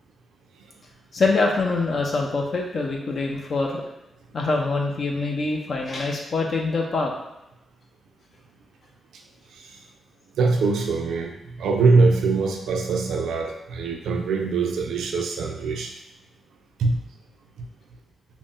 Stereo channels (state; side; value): normal; both; correlation 0.78